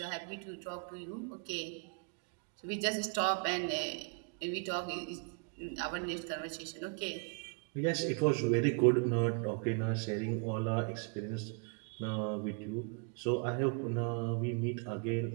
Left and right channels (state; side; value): quieter; left; 37.1 dB